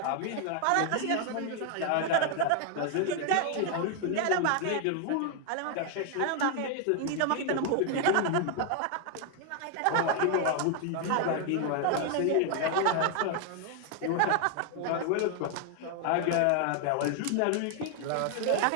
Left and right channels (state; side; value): different; both; correlation 0.00